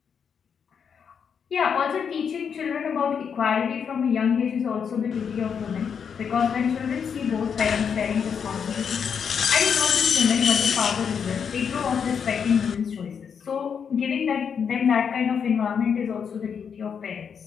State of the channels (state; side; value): quieter; right; 7.0 dB